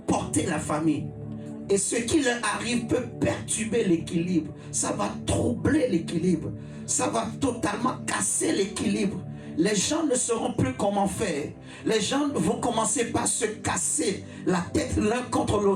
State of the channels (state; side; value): identical; both; correlation 1.00